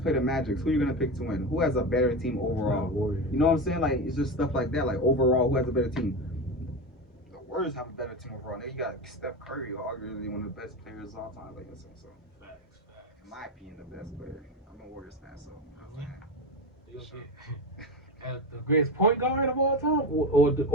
the Magic, who are you gonna pick to win? Who has a better team overall? You know what I'm saying? Like, it's just stuff like that. Like overall, who has a better team? The Warriors have a better team overall. Now you got Steph Curry, arguably one of the best players of all time. Like, so facts. In my opinion, the best player. I'm a Warriors fan, so. The greatest point guard of all time, or the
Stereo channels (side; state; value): both; normal; correlation 0.21